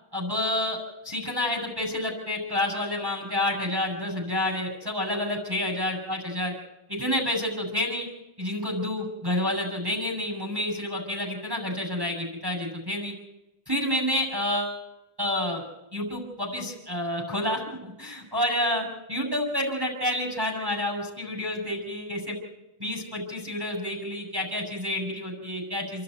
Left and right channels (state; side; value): late; left; 1.1 ms